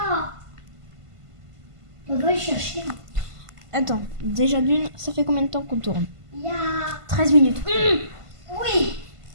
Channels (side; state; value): left; late; 1.5 ms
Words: On va le chercher. Attends, déjà d'une, ça fait combien de temps qu'on tourne? Il y a... 13 minutes. Oui.